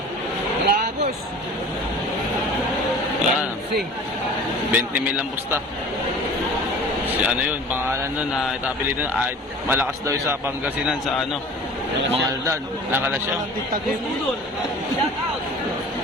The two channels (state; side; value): normal; both; correlation 0.42